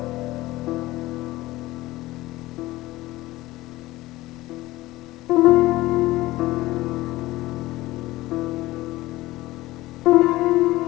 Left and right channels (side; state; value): right; quieter; 18.1 dB